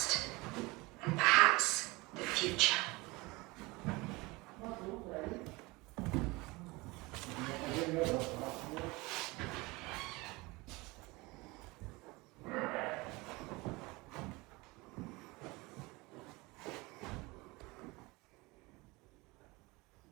and perhaps the future.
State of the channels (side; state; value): left; quieter; 23.5 dB